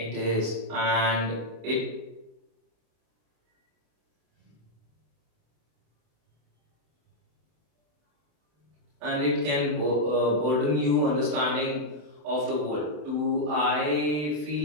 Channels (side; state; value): left; late; 33 ms